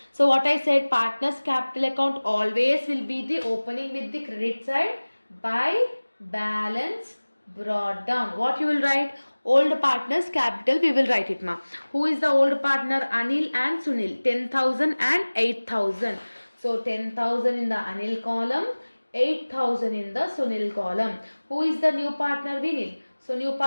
So what I said, partners capital account always will be the opening with the credit side by balance brought down. What you will write? Old partners capital we will write it, ma. Who is the old partner? Anil and Sunil. 10,000 and 8,000. So 10,000 in the Anil column, 8,000 in the Sunil column. Who is the new partner? Vinil. So new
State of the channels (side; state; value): both; inverted; correlation -1.00